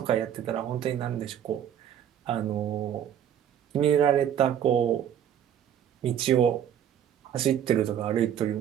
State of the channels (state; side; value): quieter; left; 9.7 dB